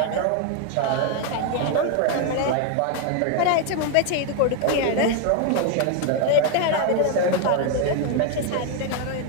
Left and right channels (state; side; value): different; both; correlation 0.01